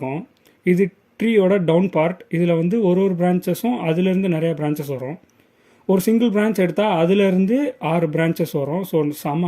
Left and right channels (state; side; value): identical; both; correlation 1.00